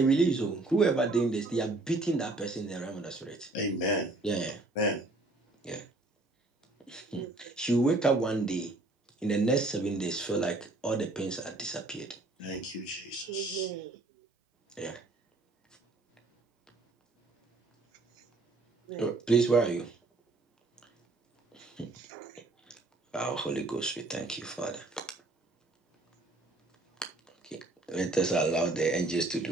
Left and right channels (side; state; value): left; quieter; 3.1 dB